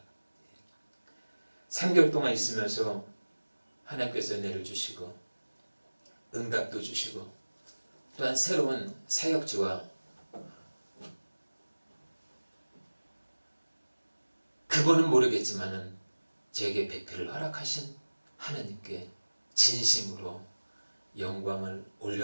3개월 동안 있으면서 하나님께서 은혜를 주시고 응답도 주시고 또한 새로운 사역지와 그분은 모르겠지만은 제게 배필을 허락하신 하나님께 진심으로 영광을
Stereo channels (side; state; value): both; inverted; correlation -1.00